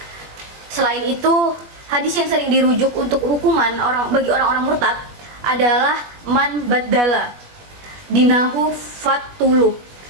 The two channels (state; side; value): late; left; 21 ms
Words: Selain itu, hadis yang sering dirujuk untuk hukuman bagi orang-orang murtad adalah man baddala dinahu fatuluh.